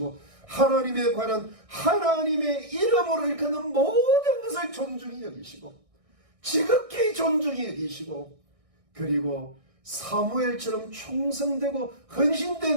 하나님에 관한 하나님의 이름으로 일컫는 모든 것을 존중히 여기시고 지극히 존중히 여기시고 그리고 사무엘처럼 충성되고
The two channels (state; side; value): late; left; 1.6 ms